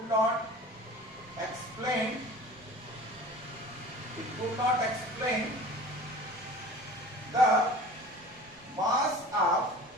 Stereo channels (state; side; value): normal; both; correlation 0.41